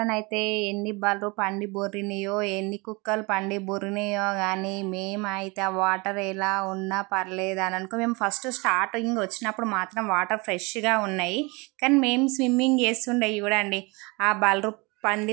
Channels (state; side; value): quieter; left; 27.1 dB